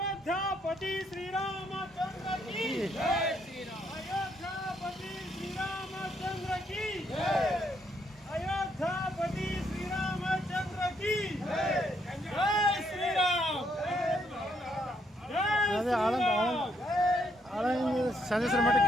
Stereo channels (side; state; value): both; normal; correlation 0.73